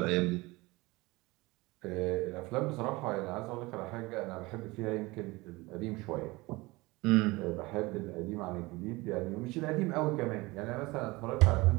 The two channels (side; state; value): left; quieter; 22.3 dB